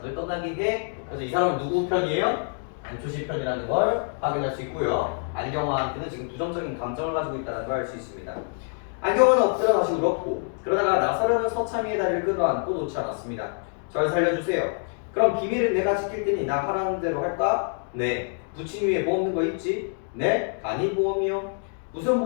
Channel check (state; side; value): silent; right; 57 dB below the other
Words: 떠나게 해. 그래서 이 사람은 누구 편이에요? 안초시 편이라는 걸 확인할 수 있고요. 안경화한테는 지금 부정적인 감정을 가지고 있다는 걸 알 수 있습니다. 안경화는 엎드려 다시 울었고 그러다가 나서려는 서참이의 다리를 끌어안고 놓지 않았습니다. 절 살려주세요. 그럼 비밀은 내가 지킬 테니 나 하라는 대로 할까? 네. 부친 위에 뭐 없는 거 있지? 네. 간이 보험이요. 무슨